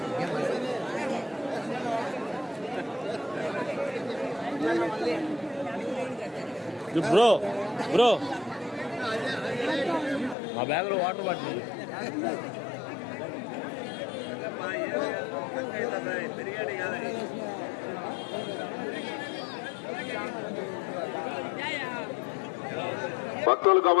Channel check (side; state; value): right; drops out; at 10.4 s